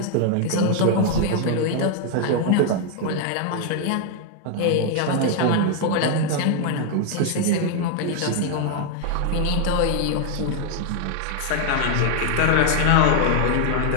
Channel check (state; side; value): different; both; correlation 0.00